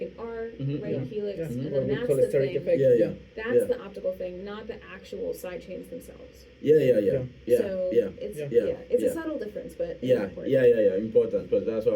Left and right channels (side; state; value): both; identical; correlation 1.00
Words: an R, Mhm, right? yeah, Helix, yeah. and What then we that's call a the steric thing. effect. Yeah. That's Yeah. the optical thing, not the actual side chains themselves. Yeah. So it's it's yeah. a subtle difference, but it's Yeah, important. important, because that's what